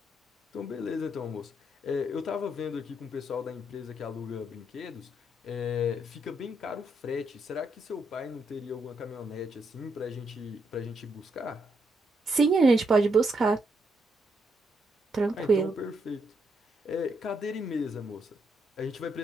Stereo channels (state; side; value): normal; both; correlation 0.78